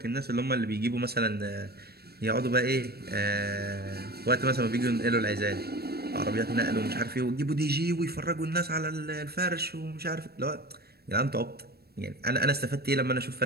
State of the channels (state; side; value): late; left; 0.46 ms